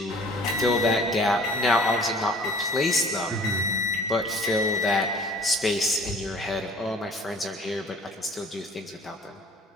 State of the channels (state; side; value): normal; both; correlation 0.50